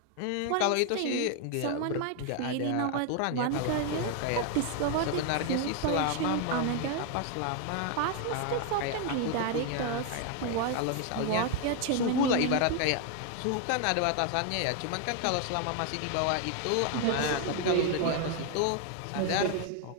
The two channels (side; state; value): both; different; correlation 0.01